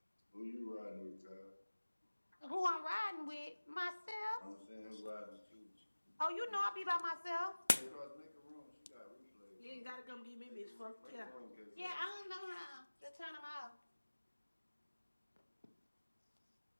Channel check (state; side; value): inverted; both; correlation -1.00